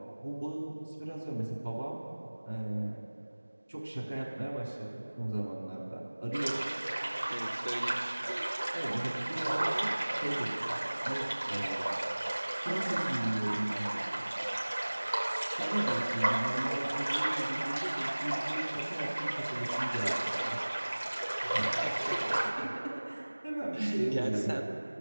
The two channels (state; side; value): inverted; both; correlation -1.00